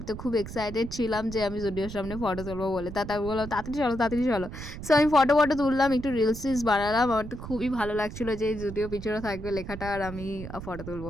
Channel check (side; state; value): right; noise; rumble, 10 dB below the sound